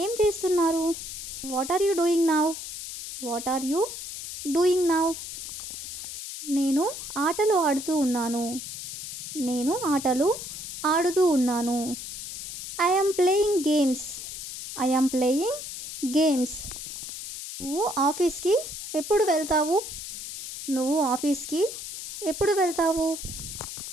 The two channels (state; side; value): noise; left; hiss, 8 dB below the sound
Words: చేస్తున్నారు? What are you doing now? What are you doing now? నేను ఆటలు ఆడుతూ ఉన్నాను. నేను ఆటలు ఆడుతూ ఉన్నాను. I am playing games. I am playing games. నువ్వు ఆఫీస్కి ఎప్పుడు వెళ్తావు? నువ్వు ఆఫీస్కి ఎప్పుడు వెళ్తావు?